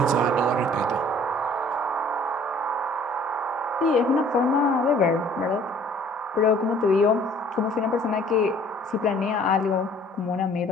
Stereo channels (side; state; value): both; normal; correlation 0.54